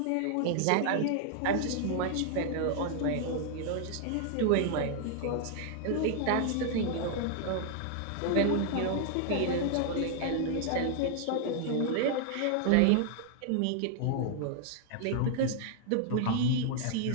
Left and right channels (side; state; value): both; different; correlation 0.00